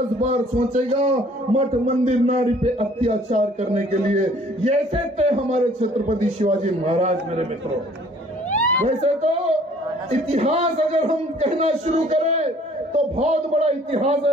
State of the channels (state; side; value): normal; both; correlation 0.56